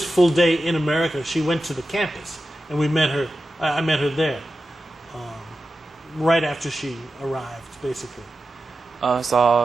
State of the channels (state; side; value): normal; both; correlation 0.92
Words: full day in America, she went to the campus. And we met her. I met her there. Right after she arrived, basically.